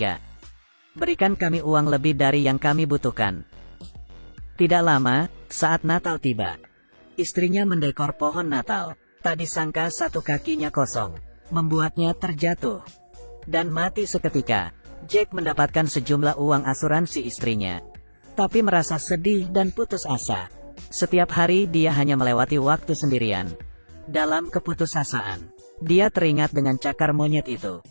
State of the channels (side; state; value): both; inverted; correlation -1.00